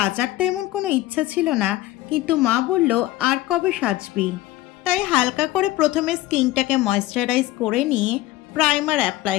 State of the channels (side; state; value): right; quieter; 16.3 dB